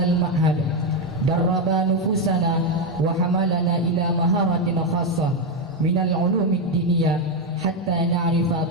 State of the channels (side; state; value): both; normal; correlation 0.05